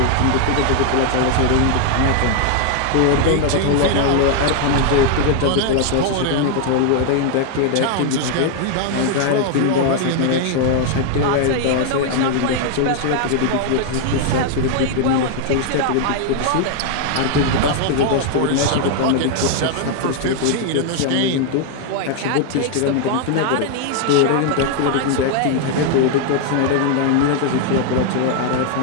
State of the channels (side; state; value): both; different; correlation 0.00